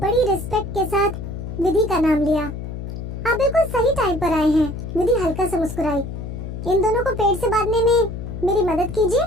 रिस्पेक्ट के साथ विधि का नाम लिया। आप बिल्कुल सही टाइम पर आए हैं। विधि हल्का सा मुस्कुराई। इन दोनों को पेड़ से बांधने में मेरी मदद कीजिए।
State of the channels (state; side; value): noise; left; hum, 7 dB below the sound